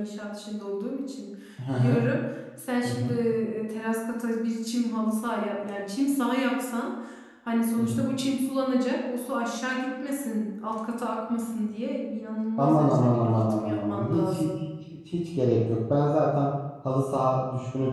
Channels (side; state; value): both; identical; correlation 1.00